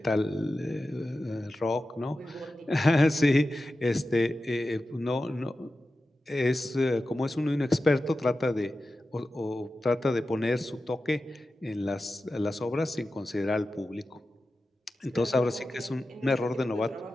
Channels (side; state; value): both; normal; correlation 0.93